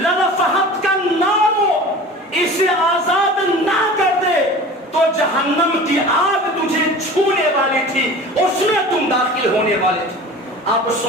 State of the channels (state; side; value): normal; both; correlation 0.38